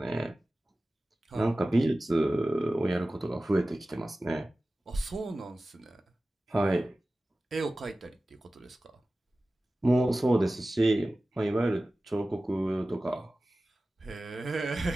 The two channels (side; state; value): both; normal; correlation 0.96